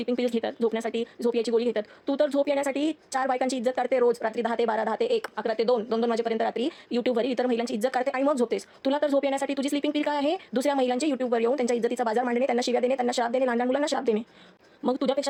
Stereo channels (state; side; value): identical; both; correlation 1.00